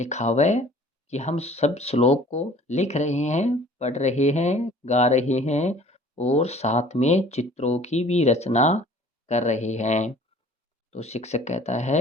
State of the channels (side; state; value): both; normal; correlation 0.51